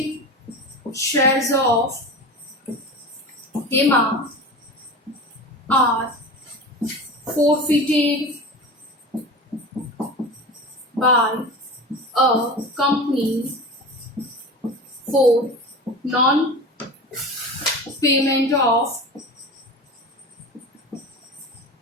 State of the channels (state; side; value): normal; both; correlation 0.31